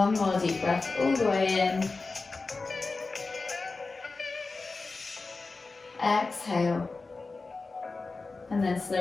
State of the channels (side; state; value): right; quieter; 3.8 dB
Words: more deep breath all the way in. Exhale. And then